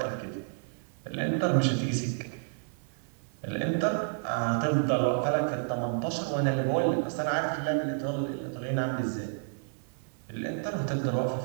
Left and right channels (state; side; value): silent; left; 55 dB below the other